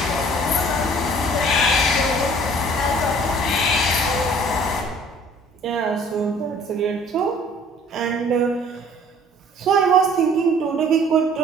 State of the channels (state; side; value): normal; both; correlation 0.53